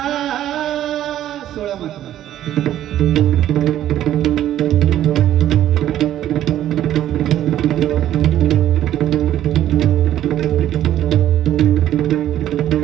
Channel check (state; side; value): quieter; left; 12.1 dB